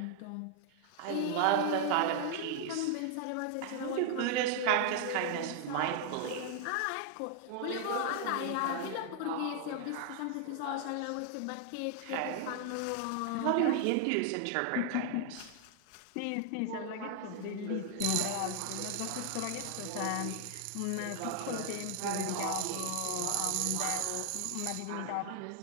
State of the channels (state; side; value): different; both; correlation 0.00